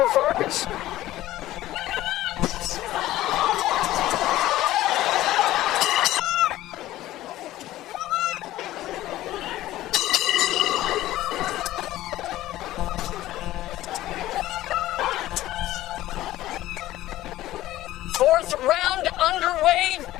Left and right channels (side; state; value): right; quieter; 15.2 dB